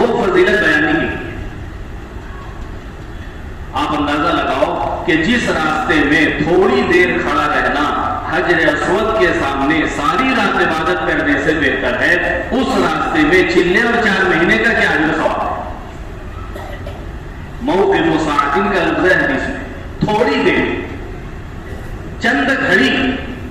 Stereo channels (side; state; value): both; identical; correlation 1.00